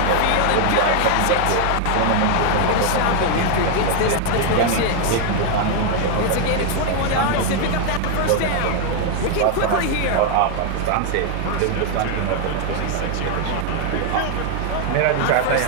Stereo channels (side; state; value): both; different; correlation 0.00